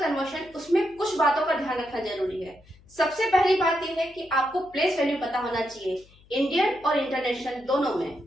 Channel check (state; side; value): noise; left; hum, 27 dB below the sound